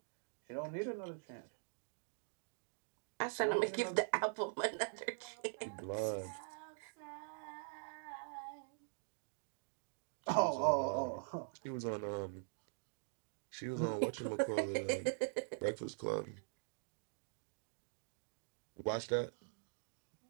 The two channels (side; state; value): left; silent; digital silence